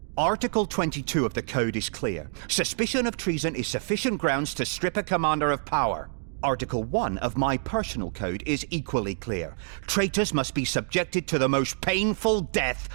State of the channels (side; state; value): left; silent; digital silence